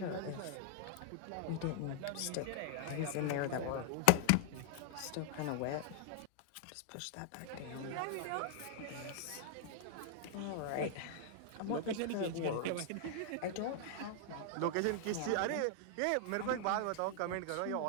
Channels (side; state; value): both; different; correlation 0.00